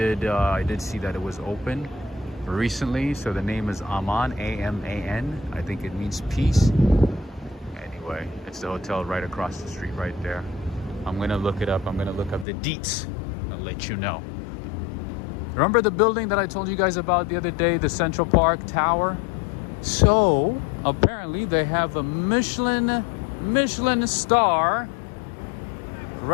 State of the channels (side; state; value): right; drops out; at 12.5 s